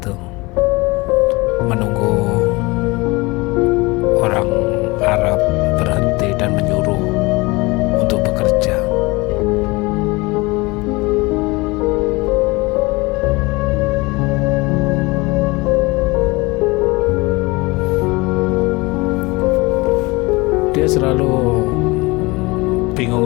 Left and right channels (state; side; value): quieter; right; 24.1 dB